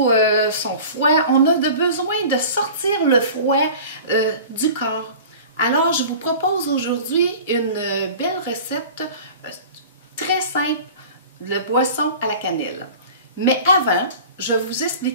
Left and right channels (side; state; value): both; inverted; correlation -0.40